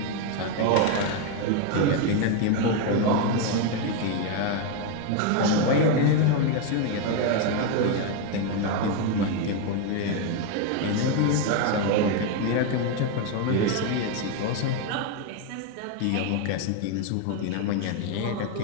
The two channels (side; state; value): both; different; correlation 0.02